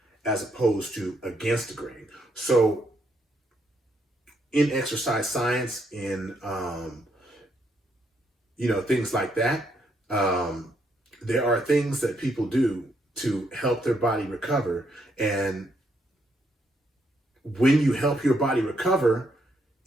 as opposed to against the grain? So in exercise science, in things like that, there are things that people do to help their body recover. And when you help your body recover,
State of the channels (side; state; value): both; normal; correlation 0.75